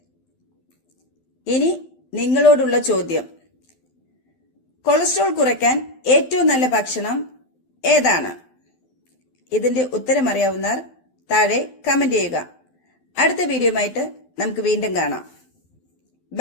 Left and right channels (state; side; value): late; right; 12 ms